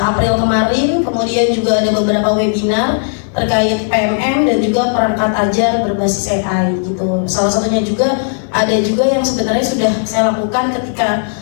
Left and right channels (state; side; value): silent; right; digital silence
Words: kemarin. Kemudian juga ada beberapa webinar terkait PMM dan juga perangkat ajar berbasis AI gitu. Salah satunya juga ada juga yang sebenarnya sudah saya lakukan ketika